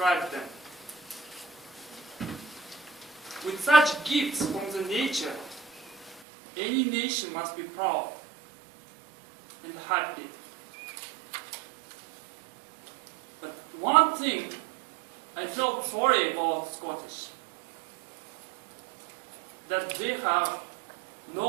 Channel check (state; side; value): drops out; left; at 6.2 s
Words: them. With such gifts from the nature, any nation must be proud and happy. But one thing I felt sorry about Scottish, that they have